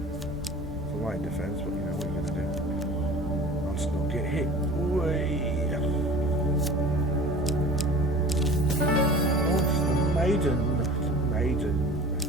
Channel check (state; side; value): normal; both; correlation 0.41